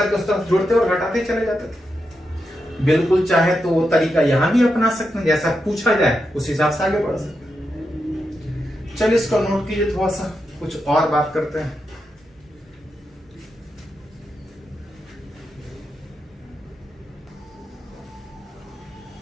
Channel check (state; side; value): normal; both; correlation 0.86